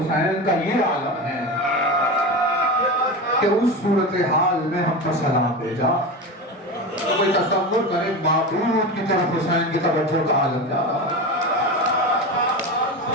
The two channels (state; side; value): normal; both; correlation 0.24